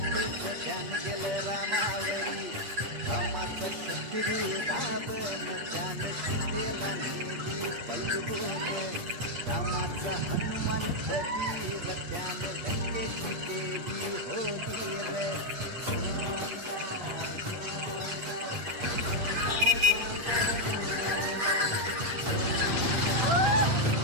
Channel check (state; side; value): late; left; 8.4 ms